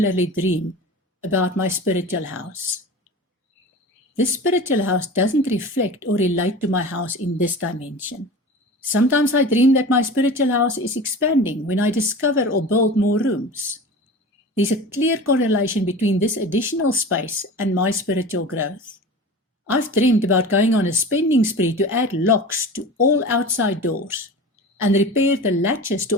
dream about my spiritual house. This spiritual house doesn't reflect or relate to my house in this dimension. Sometimes I dream that my spiritual house is expanding when I discover or build more rooms. There's a clear correlation between this additional space and my spiritual growth. I've dreamed about going on a spending spree to add locks to all outside doors and repair the latches to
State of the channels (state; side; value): normal; both; correlation 0.34